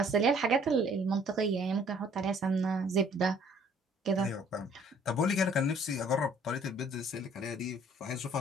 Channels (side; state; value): both; normal; correlation 0.58